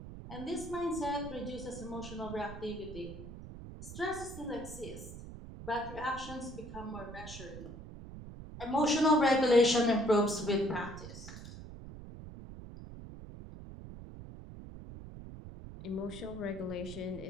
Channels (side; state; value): right; noise; rumble, 12 dB below the sound